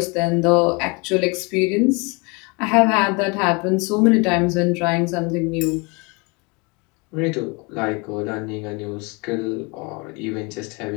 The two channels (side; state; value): right; quieter; 29.3 dB